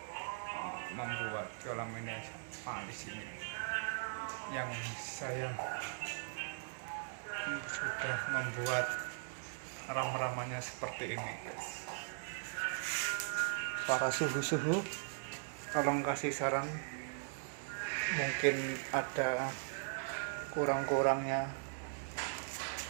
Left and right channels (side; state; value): left; silent; digital silence